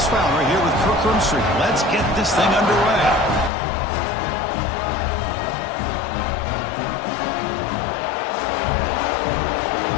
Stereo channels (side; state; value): right; drops out; at 3.5 s